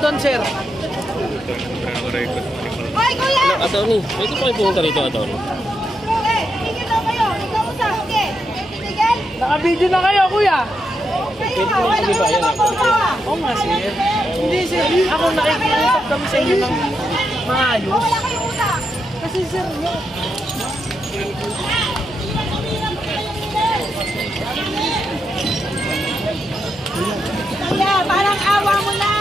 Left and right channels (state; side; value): normal; both; correlation 0.83